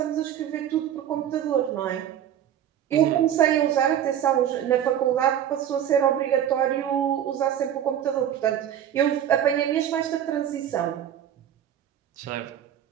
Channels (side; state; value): left; quieter; 10.2 dB